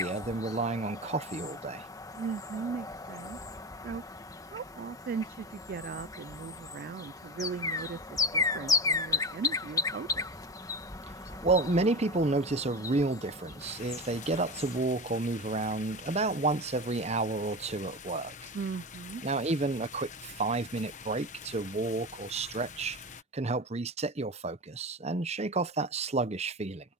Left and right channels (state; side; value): normal; both; correlation 0.25